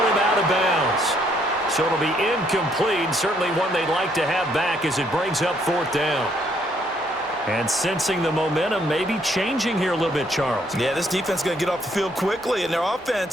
him out of bounds. So it'll be incomplete. Certainly one they'd like to have back as it brings up 4th down. And sensing the momentum maybe changing here a little bit, Charles. Yeah, this defense is going to get off the field quickly, and their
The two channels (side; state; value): both; normal; correlation 0.69